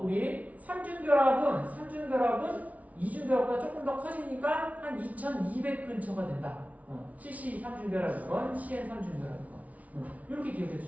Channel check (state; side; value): late; left; 0.070 ms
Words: 우리 삼중결합은 이중결합보다 조금 더 커지니까 한 2200 근처가 된다. CC 삼중결합이건 CN 삼중결합이건 이렇게 기억해